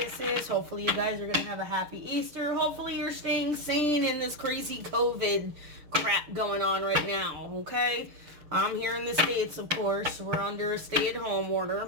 is. Hopefully you guys are going to have a happy Easter. Hopefully you're staying sane in this crazy COVID crap going on right now, okay? I'm here in the States, of course. We're under a stay-at-home order.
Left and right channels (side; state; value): left; late; 6.6 ms